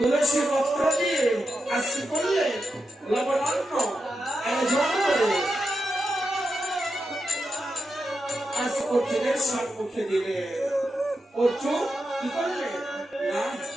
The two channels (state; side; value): normal; both; correlation 0.87